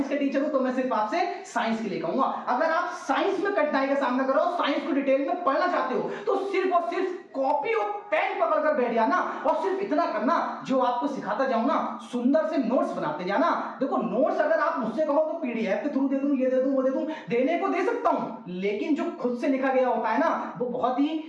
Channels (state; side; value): identical; both; correlation 1.00